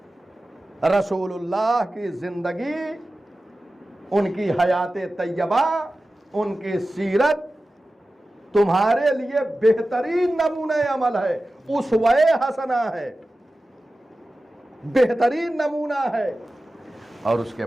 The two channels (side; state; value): both; normal; correlation 0.95